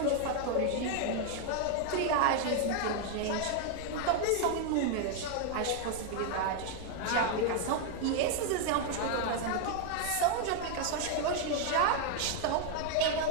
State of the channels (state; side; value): different; both; correlation 0.00